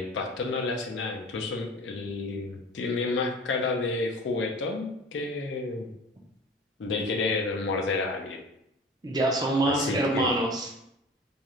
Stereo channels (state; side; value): normal; both; correlation 0.40